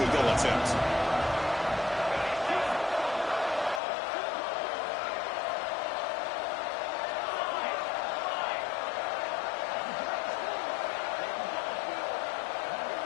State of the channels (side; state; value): right; drops out; at 3.8 s